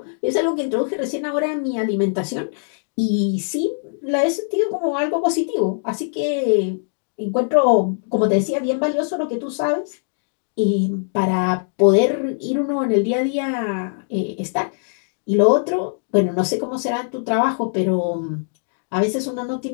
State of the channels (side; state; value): right; silent; digital silence